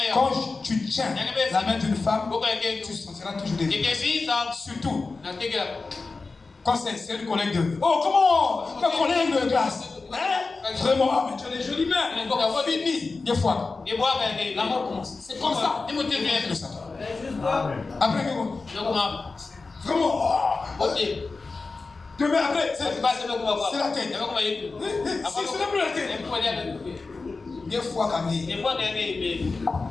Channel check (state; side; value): quieter; right; 3.9 dB